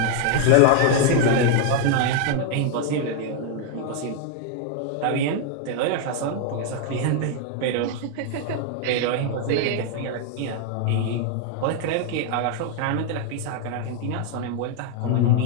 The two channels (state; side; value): different; both; correlation 0.00